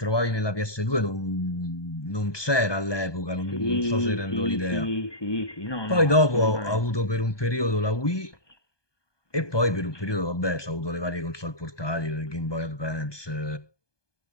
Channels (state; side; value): late; right; 1.2 ms